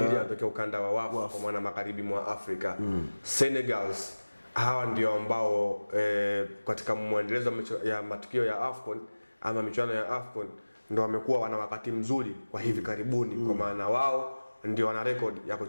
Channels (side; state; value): both; inverted; correlation -1.00